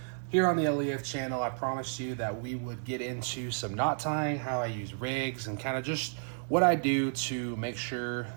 Here on the LEF channel, I promised you that we would get into some knot tying, how I use rigs, and kind of just what I do to make sure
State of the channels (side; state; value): left; silent; digital silence